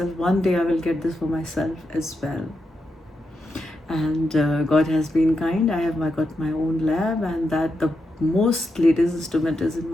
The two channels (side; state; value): both; normal; correlation 0.86